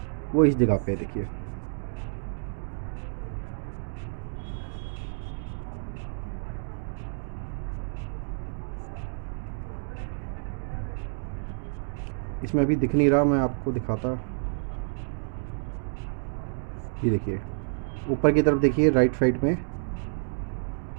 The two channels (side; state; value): left; silent; digital silence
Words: वो इस जगह पे देखिए। इसमें अभी दिख नहीं रहा, मैं आपको दिखाता। ये देखिए ऊपर की तरफ देखिए, राइट साइड में